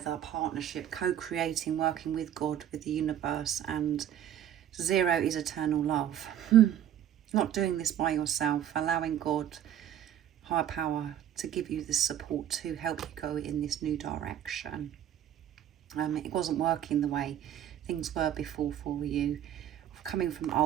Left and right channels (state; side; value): quieter; left; 10.8 dB